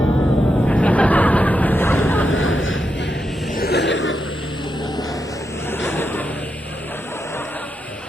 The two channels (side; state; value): both; normal; correlation 0.85